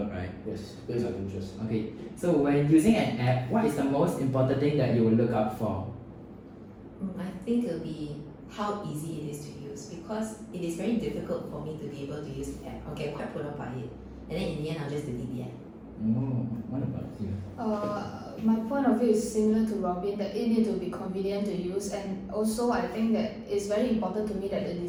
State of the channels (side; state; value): both; identical; correlation 1.00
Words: right? Yes, based on interest. Okay, so when using an app, what is the most important thing that you will look out for? I think it'll be how easy it is to use, because it is very difficult for me to be able to use the app. I'll get quite put off by it, and then in the end I'll just delete the app. Oh, what about you? My point of view is similar to Robin, that it needs to be convenient to use, and also I think that it's very important to me that the